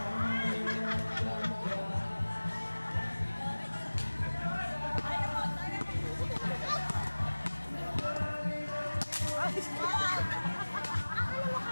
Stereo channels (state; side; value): inverted; both; correlation -1.00